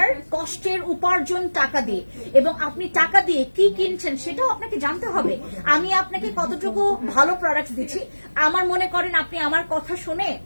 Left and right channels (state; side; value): inverted; both; correlation -1.00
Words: কষ্টের উপার্জন টাকা দিয়ে, এবং আপনি টাকা দিয়ে কি কিনছেন সেটাও আপনাকে জানতে হবে। আমি আপনাকে কতটুকু ভালো প্রোডাক্টস দিচ্ছি, আমার মনে করেন আপনি আমার কথা শুনে